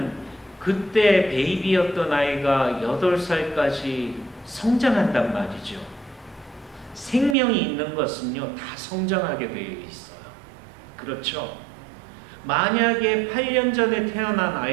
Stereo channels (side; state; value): left; drops out; at 7.4 s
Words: 그때 베이비였던 아이가 8살까지 성장한단 말이죠. 생명이 있는 것은요, 다 성장하게 되어 있어요. 그렇죠? 만약에 8년 전에 태어난